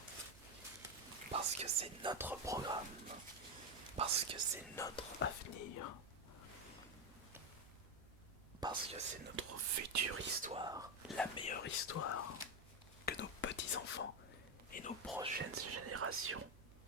Parce que c'est notre programme. Parce que c'est notre avenir. Parce que c'est notre future histoire, la meilleure histoire que nos petits-enfants et nos prochaines générations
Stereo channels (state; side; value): noise; right; hum, 21 dB below the sound